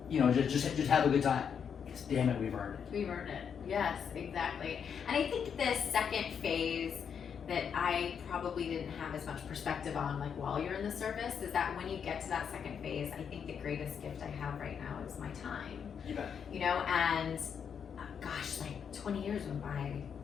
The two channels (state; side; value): quieter; right; 7.3 dB